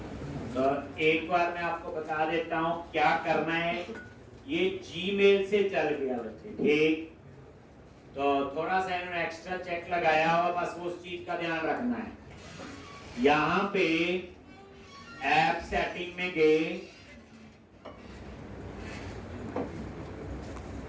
तो एक बार मैं आपको बता देता हूं क्या करना है। ये जीमेल से चल गया बच्चे, ठीक। तो थोड़ा सा इन्होंने एक्स्ट्रा चेक लगाया हुआ, बस उस चीज का ध्यान रखना है। यहां पे ऐप सेटिंग में गए,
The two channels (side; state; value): both; identical; correlation 1.00